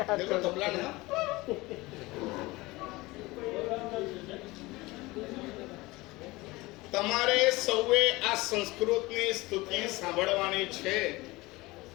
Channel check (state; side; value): quieter; right; 21.3 dB